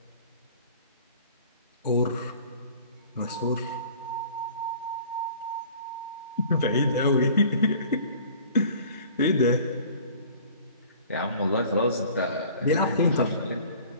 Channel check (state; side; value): inverted; both; correlation -0.48